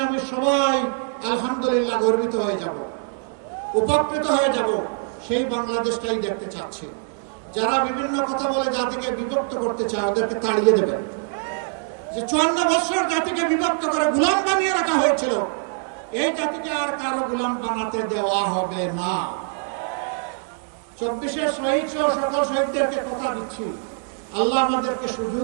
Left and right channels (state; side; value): silent; left; 59 dB below the other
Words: আমি সবাই আলহামদুলিল্লাহ গর্বিত হয়ে যাব, উপকৃত হয়ে যাব। সেই বাংলাদেশটাই দেখতে চাচ্ছি। যারা বিভিন্ন কথা বলে জাতিকে বিভক্ত করতে চায় ওদেরকে তাড়িয়ে দেবেন। যে 54 বছর জাতিকে বিভক্ত করে গোলাম বানিয়ে রাখা হয়েছিল, এই জাতিকে আর কারো গোলাম বানাতে দেওয়া হবে না। 24 শহীদ সহ সকল শহীদদেরকে কথা দিচ্ছি, আল্লাহ আমাদেরকে